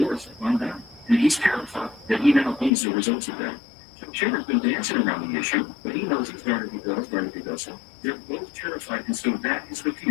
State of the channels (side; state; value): right; drops out; at 2.7 s